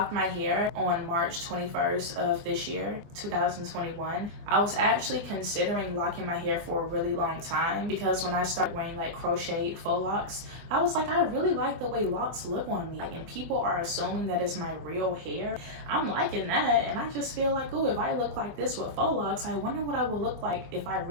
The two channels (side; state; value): left; late; 24 ms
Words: my hair on March 21st of this year, 2021, I was actually considering locking my hair for a really long time because when I started wearing like crocheted faux locks, I was like, I really like the way locks look on me. And people are assuming that it's my real hair. I'm liking that, and I just feel like, oh, if I look like this with faux locks, I wonder what I would look like if I